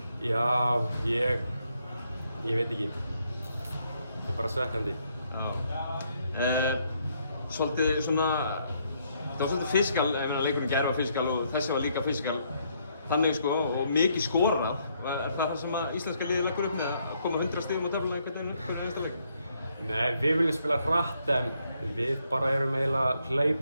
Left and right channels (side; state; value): both; inverted; correlation -0.73